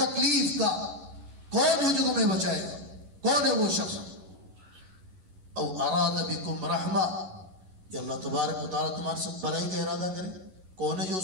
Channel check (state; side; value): late; left; 11 ms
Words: کا، کون ہے جو تمہیں بچائے گا، کون ہے وہ شخص. او اراد بکم رحمہ، یا اللہ تبارک و تعالیٰ تمہارے ساتھ بھلائی کا ارادہ کرے، کون ہے جو